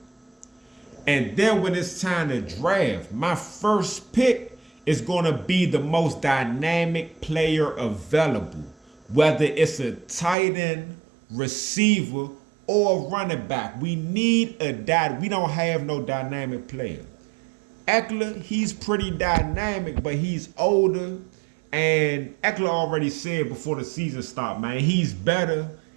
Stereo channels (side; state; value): left; drops out; at 10.4 s